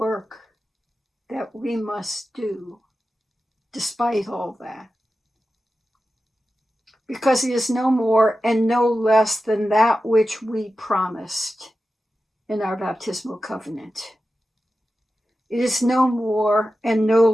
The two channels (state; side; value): normal; both; correlation 0.92